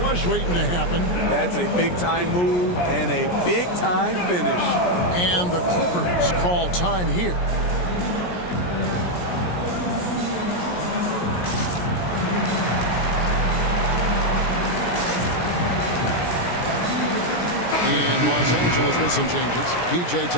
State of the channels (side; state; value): right; late; 17 ms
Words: waiting to happen. That's a big-time move and a big-time finish. And the Clippers call time here. And Los Angeles with some changes. P.J.